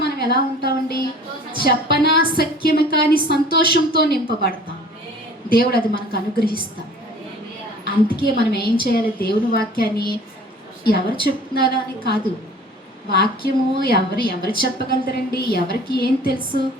మనం ఎలా ఉంటామండి, చెప్పనాశక్యము కాని సంతోషంతో నింపబడతాం. దేవుడు అది మనకు అనుగ్రహిస్తాం. అందుకే మనం ఏం చేయాలి, దేవుని వాక్యాన్ని ఎవరు చెప్తున్నారా అని కాదు, వాక్యము ఎవరు చెప్పగలుగుతారండి, ఎవరికి ఏం తెలుసు,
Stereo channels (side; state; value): both; normal; correlation 0.48